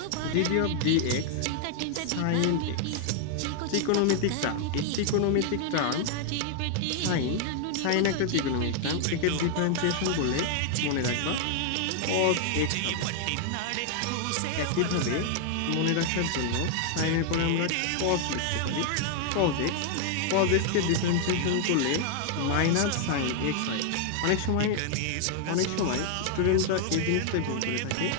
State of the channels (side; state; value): both; different; correlation 0.00